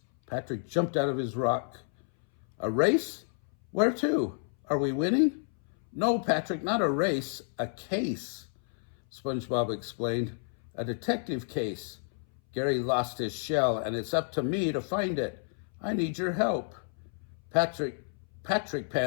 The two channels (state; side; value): silent; right; 58 dB below the other